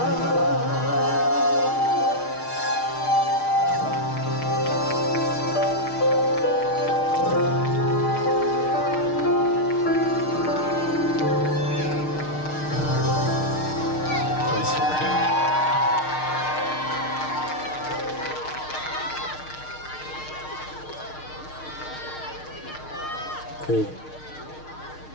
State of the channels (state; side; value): late; right; 6.5 ms